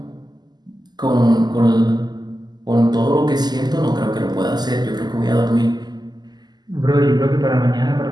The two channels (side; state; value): left; late; 0.20 ms